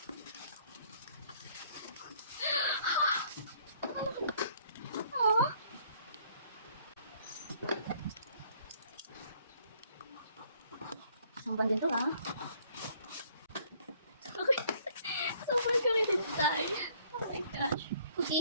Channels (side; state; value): both; inverted; correlation -0.62